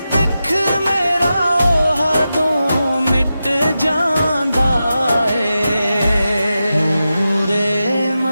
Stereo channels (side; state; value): both; inverted; correlation -0.91